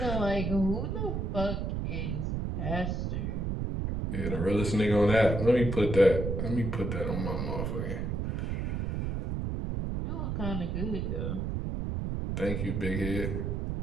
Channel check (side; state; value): right; noise; rumble, 1 dB below the sound